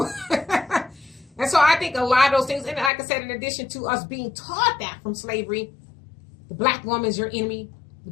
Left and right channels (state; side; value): drops out; right; at 2.9 s